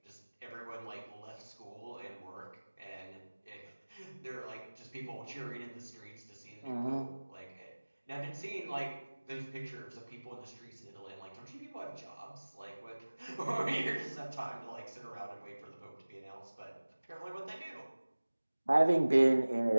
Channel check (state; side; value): inverted; both; correlation -1.00